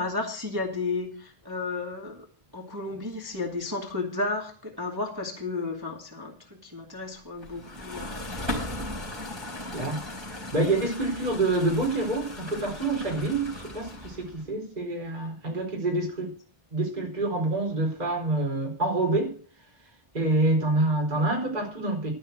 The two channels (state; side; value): late; left; 1.3 ms